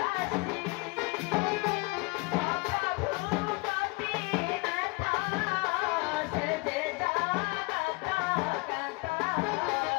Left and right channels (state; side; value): quieter; right; 27.1 dB